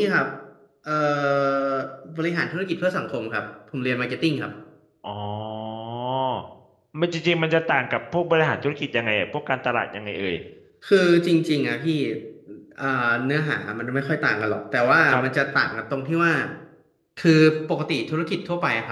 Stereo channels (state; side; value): identical; both; correlation 1.00